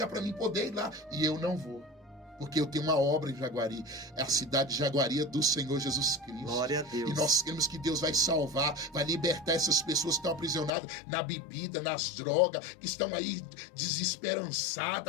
para mim poder ir lá. E eu não vou. Porque eu tenho uma obra em Jaguari. É a cidade de Jaguari do Senhor Jesus Cristo. Glória a Deus. E nós queremos que Deus vai salvar, vai libertar essas pessoas que estão aprisionadas na bebida, nas drogas, que estão aí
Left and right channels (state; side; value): drops out; right; at 10.7 s